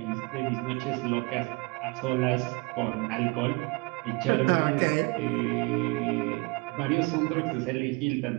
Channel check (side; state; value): left; quieter; 26.6 dB